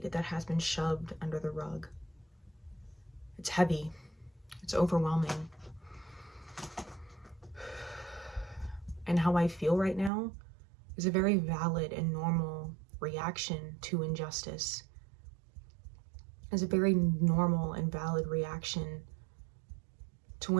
that has been shoved under the rug. It's heavy. It's overwhelming. And how I feel right now is a very valid and normal reaction to injustice. It's a very normal and valid reaction to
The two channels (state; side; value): drops out; left; at 10.1 s